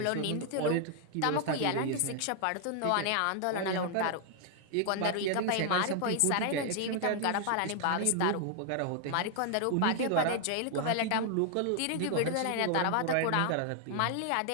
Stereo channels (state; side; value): different; both; correlation 0.00